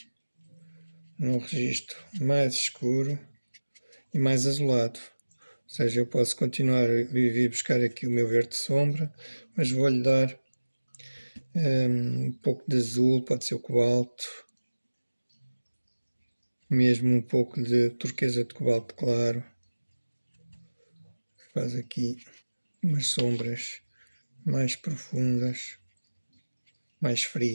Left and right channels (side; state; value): both; inverted; correlation -1.00